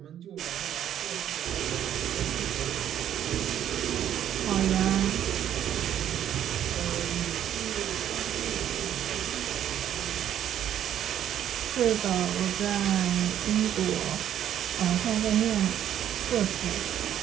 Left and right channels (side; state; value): left; quieter; 10.6 dB